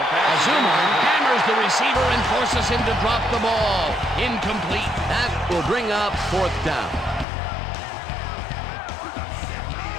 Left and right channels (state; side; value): drops out; right; at 7.2 s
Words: hammers the receiver and forces him to drop the ball. Incomplete. That will bring up fourth down.